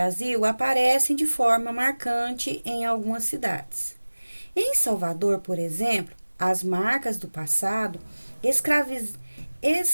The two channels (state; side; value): inverted; both; correlation -1.00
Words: aparece de forma marcante em algumas cidades. Em Salvador, por exemplo, as marcas do passado